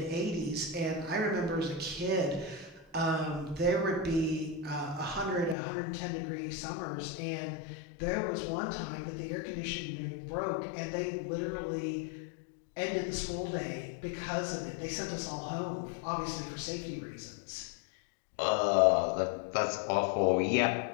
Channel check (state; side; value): drops out; right; at 5.6 s